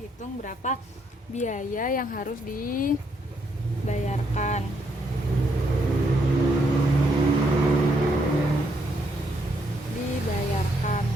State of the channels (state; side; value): normal; both; correlation 0.75